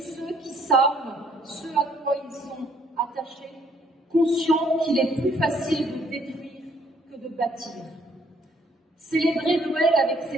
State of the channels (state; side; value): normal; both; correlation 0.65